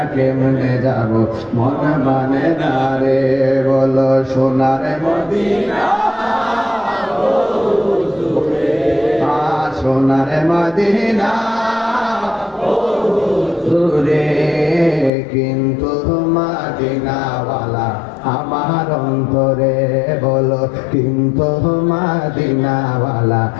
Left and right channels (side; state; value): right; drops out; at 15.1 s